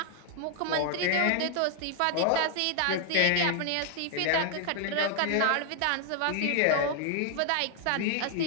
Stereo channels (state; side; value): different; both; correlation 0.00